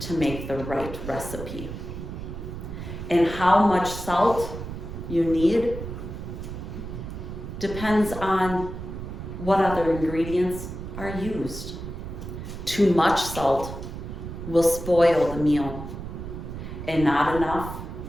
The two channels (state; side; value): noise; right; rumble, 8 dB below the sound